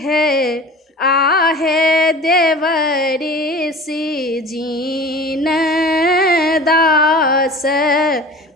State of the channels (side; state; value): both; normal; correlation 0.39